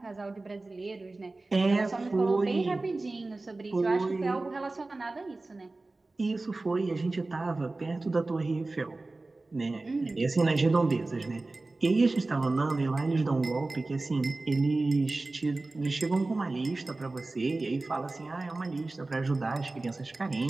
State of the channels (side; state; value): left; quieter; 3.2 dB